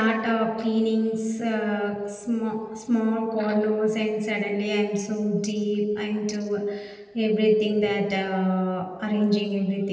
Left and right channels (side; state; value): both; identical; correlation 1.00